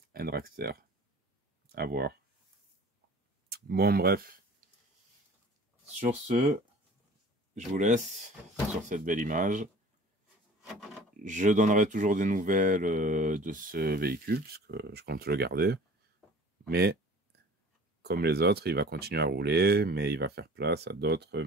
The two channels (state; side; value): normal; both; correlation 0.45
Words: un dragster. À voir. Bon, bref. Sur ce, je vous laisse sur cette belle image. Je donnerai toujours des nouvelles de ce véhicule, puisque je compte le garder. Mais, comme les autres, il va continuer à rouler, mais il va faire place à d'autres